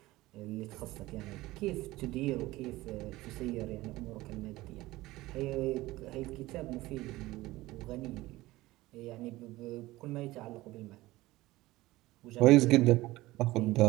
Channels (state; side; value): quieter; left; 18.4 dB